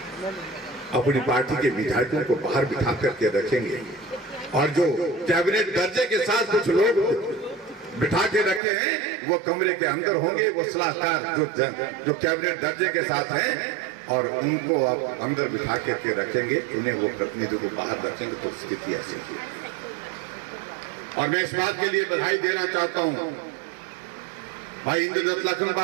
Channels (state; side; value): drops out; left; at 8.6 s